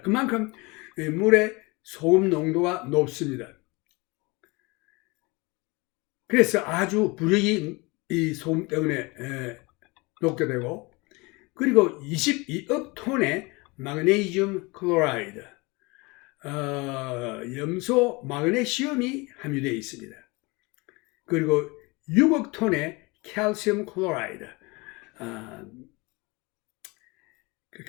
그만큼 물에 소금 농도가 높습니다. 그래서 아주 부력이 이 소금 때문에 녹게 되고, 그리고 22억 톤의 마그네슘 클로라이드, 염소 마그네슘이 함유되어 있습니다. 그리고 6억 톤의 칼슘 클로라이드,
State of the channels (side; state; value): right; quieter; 25.7 dB